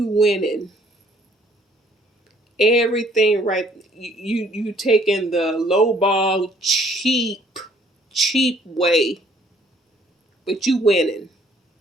winning. Everything right. You taking the lowball cheap way. But you winning.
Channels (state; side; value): normal; both; correlation 0.61